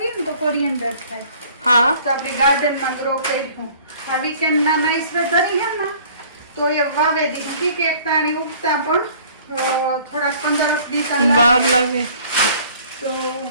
ને તો કોરિએન્ડર થાય. હા તો આપણે ગાર્ડનમાં ગ્રો કર્યું. આ વીકેન્ડના નાઈસ વેધર હે ને તો એ વાવે દીધી કે એક તાણી ઉગતા પણ થોડાક 15-20 વાર લાગે. તો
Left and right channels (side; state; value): both; inverted; correlation -0.53